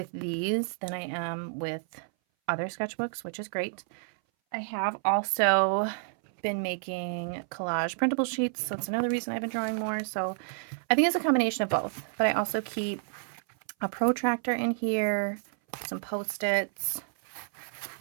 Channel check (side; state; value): left; silent; 58 dB below the other